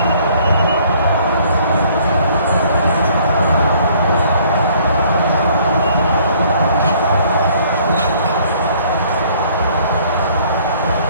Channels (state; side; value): inverted; both; correlation -0.59